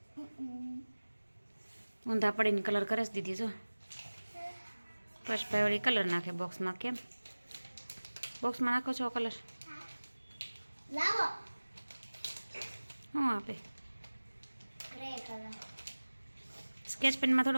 ઊંધા પડીને કલર કરે છે દીદી જો પુષ્પા વળી કલર નાખે બોક્સમાં. કેમ બોક્સમાં નાખો છો કલર? લાવો શું આપે? ગ્રે કલર સ્કેચ પેનમાં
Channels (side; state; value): both; inverted; correlation -1.00